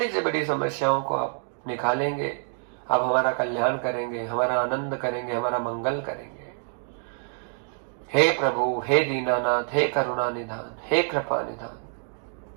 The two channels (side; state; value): left; silent; 60 dB below the other